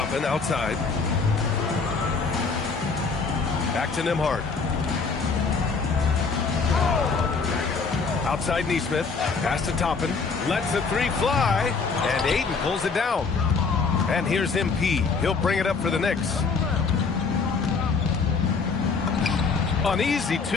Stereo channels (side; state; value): right; quieter; 4.8 dB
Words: outside. Back to Nembhard. Outside Neesmith, pass to Toppin, lets the three fly, and Ayton pulls it down. And here's MP. He'll bring it up for the Knicks. An easy